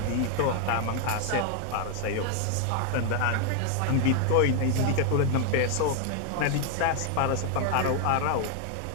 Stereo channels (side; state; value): both; different; correlation 0.00